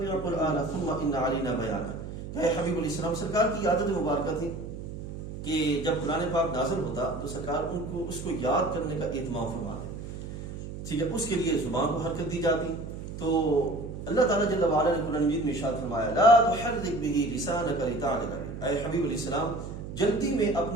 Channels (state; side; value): noise; right; hum, 9 dB below the sound